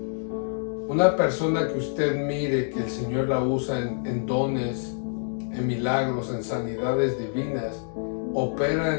Una persona que usted mire que el Señor la usa en dones, en milagros, en sanidades divinas, opera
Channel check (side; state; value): right; silent; digital silence